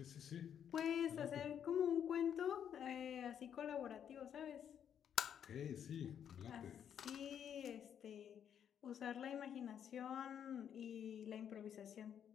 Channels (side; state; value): right; quieter; 8.8 dB